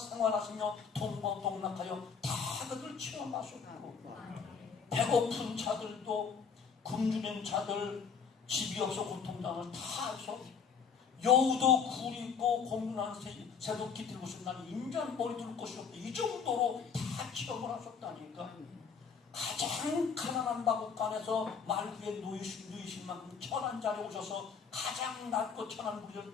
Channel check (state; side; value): quieter; right; 6.2 dB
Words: 동방동락하여 다 그들 체험하셨고, 배고픈 자들도 굶주린 자들, 집이 없어 고통당을 다 해서 여우도 굴 있고 공군한 새도 깃들고 싶은 나는 인간 머리 둘 곳이 없고 이 정도로 다 체험을 하셨다니까. 가장 가난한 마국간에서 말구에 누이신 만큼 천한 자리에 오셔서 가장 낮고 천한 우리를